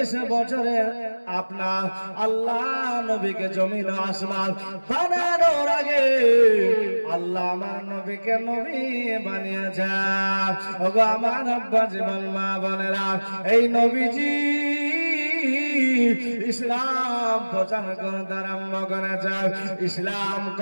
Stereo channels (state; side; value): inverted; both; correlation -1.00